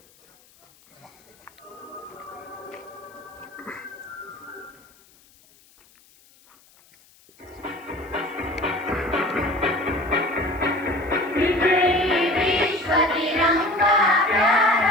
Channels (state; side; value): noise; left; hiss, 29 dB below the sound